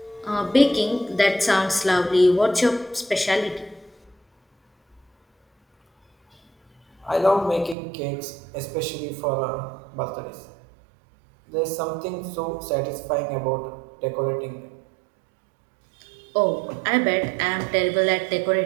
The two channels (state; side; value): drops out; left; at 7.8 s